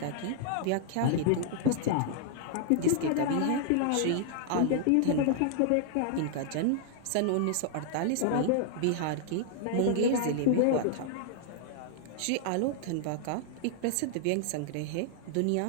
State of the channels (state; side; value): different; both; correlation -0.01